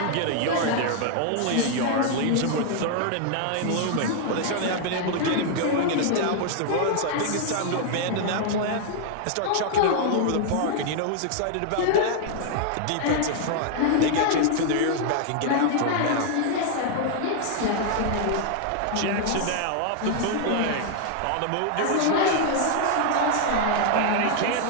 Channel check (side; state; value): both; different; correlation 0.00